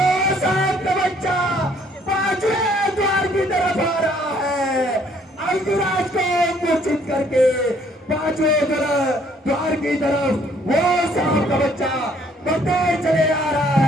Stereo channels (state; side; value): normal; both; correlation 0.63